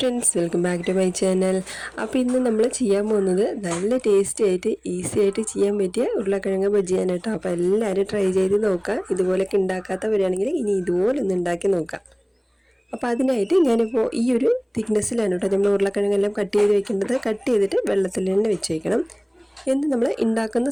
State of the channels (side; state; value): both; identical; correlation 1.00